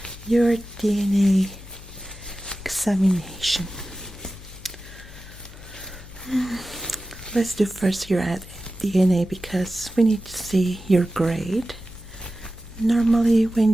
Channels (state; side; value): noise; left; hum, 17 dB below the sound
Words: your DNA examination. Let's do first your DNA because we need to see your grade. Normally,